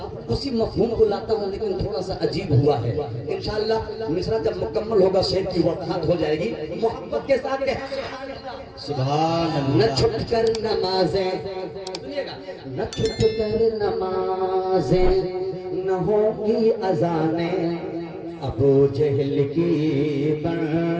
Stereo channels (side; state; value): both; identical; correlation 1.00